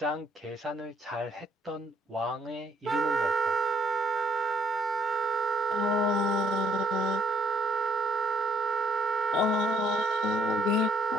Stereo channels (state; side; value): normal; both; correlation 0.67